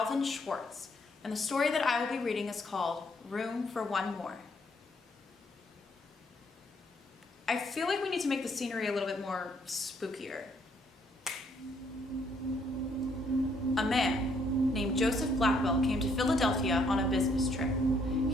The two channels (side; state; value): both; normal; correlation 0.69